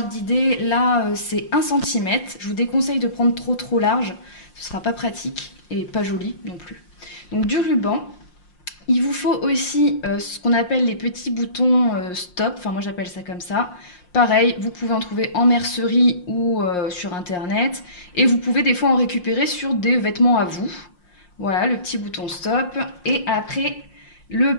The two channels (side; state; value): right; late; 5.6 ms